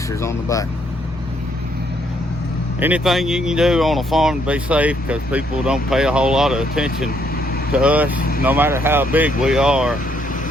on the back. Anything you can do on a farm to be safe, because people don't pay a whole lot of attention to us, no matter how big we are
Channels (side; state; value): right; noise; rumble, 18 dB below the sound